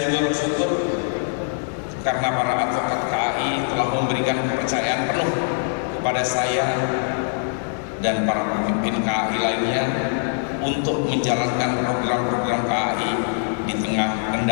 juga bersyukur karena para advokat KAI telah memberikan kepercayaan penuh kepada saya dan para pemimpin KAI lainnya untuk menjalankan program-program KAI di tengah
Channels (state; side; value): silent; right; digital silence